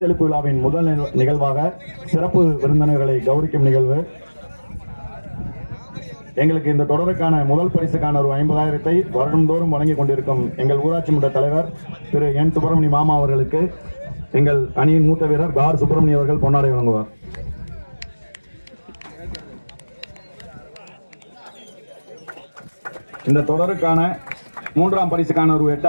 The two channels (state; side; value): inverted; both; correlation -1.00